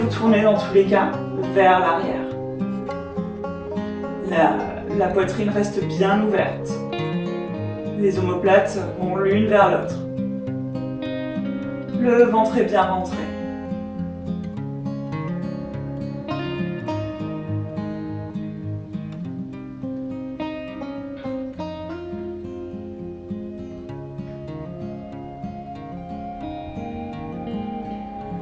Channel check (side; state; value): both; identical; correlation 1.00